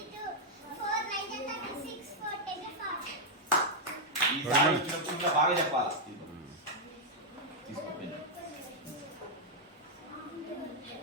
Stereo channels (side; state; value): both; normal; correlation -0.03